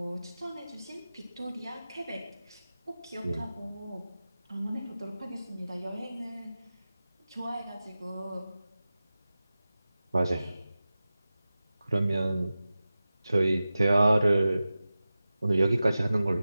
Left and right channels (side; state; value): both; inverted; correlation -0.95